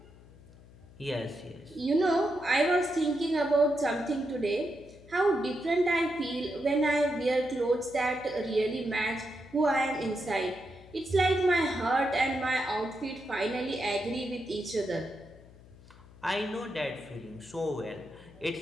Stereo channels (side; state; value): left; noise; hum, 22 dB below the sound